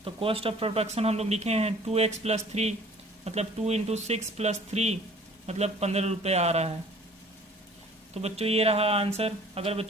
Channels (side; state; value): both; normal; correlation 0.51